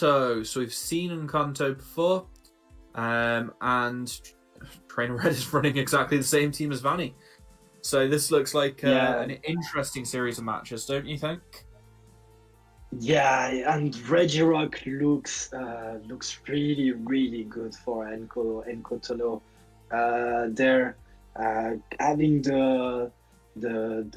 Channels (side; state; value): both; identical; correlation 1.00